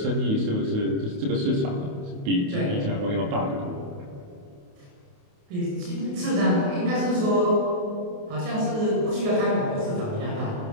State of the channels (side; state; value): left; late; 28 ms